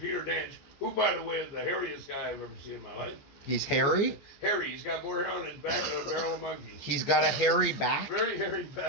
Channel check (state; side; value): late; right; 14 ms